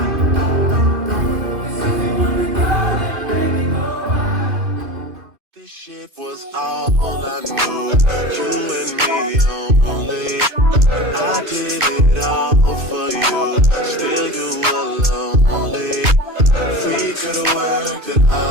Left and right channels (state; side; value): late; left; 2.6 ms